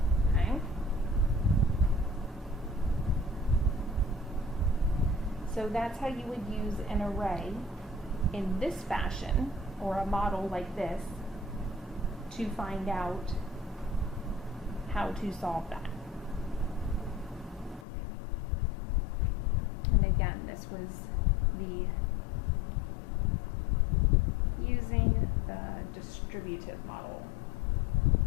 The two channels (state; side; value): drops out; right; at 17.9 s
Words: Okay? So that's how you would use an array in this fashion, or a model like this, to find out how to solve that. And again, this was using the distributive model.